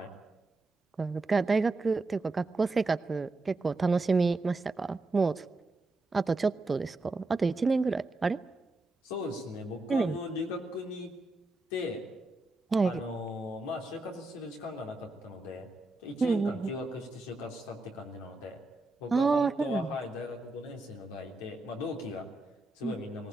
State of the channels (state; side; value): quieter; left; 3.0 dB